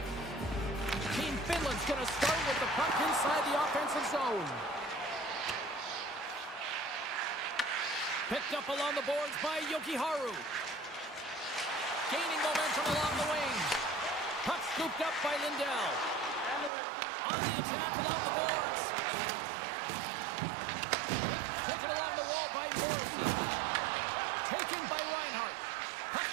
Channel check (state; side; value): drops out; left; at 16.7 s